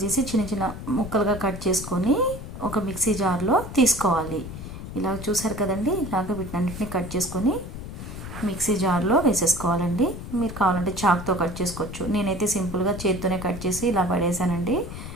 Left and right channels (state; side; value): noise; left; rumble, 10 dB below the sound